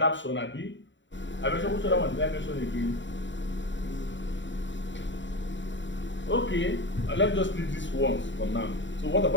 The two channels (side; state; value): right; late; 0.54 ms